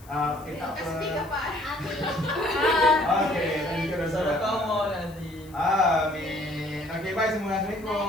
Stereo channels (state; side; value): noise; left; hiss, 25 dB below the sound